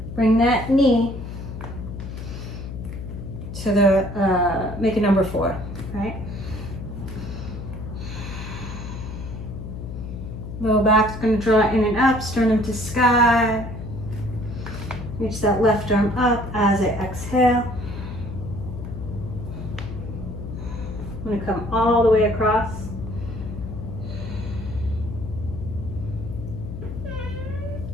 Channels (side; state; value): left; noise; hum, 8 dB below the sound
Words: bring that knee to the, make a number 4, right? Low back's going to draw in and up, sternum to sky. Reach that left arm up as I exhale. I'm going to come all the way across.